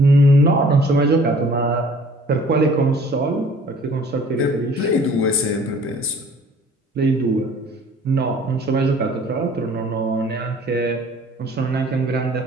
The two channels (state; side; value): normal; both; correlation 0.52